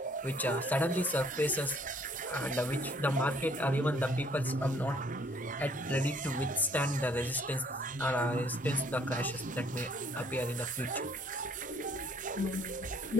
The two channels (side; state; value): both; normal; correlation 0.60